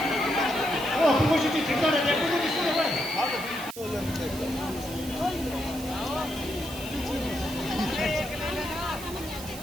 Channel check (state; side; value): noise; right; hiss, 13 dB below the sound